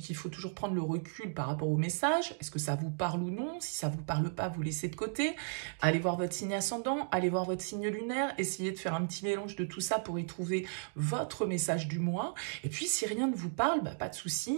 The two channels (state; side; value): silent; left; digital silence